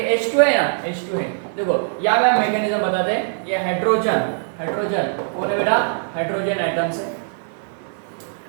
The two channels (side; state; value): left; silent; 63 dB below the other